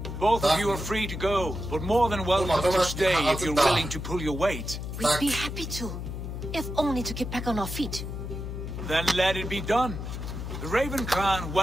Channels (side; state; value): left; noise; hum, 6 dB below the sound